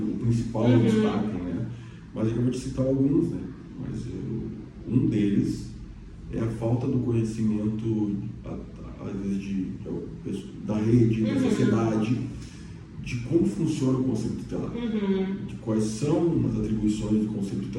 principal obstáculo, né? Mas eu vou te citar alguns, né? Mas um deles é a falta do conhecimento, às vezes, da rede, da sociedade, de como funciona o conselho tutelar, de quais são as atribuições do conselho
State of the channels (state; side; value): identical; both; correlation 1.00